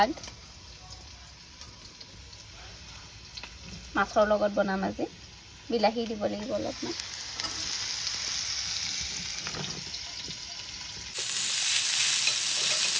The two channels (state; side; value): identical; both; correlation 1.00